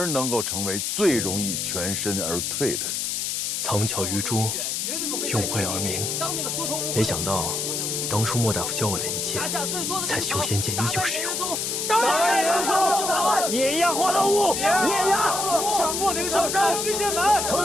能够成为最容易全身而退的人。藏巧于拙，用晦而明。没想到，当初莫大夫教我的一切，在修仙界依旧适用。碾压花道屋，碾压上莫灵上山，巨剑门，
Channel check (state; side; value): noise; left; hiss, 1 dB below the sound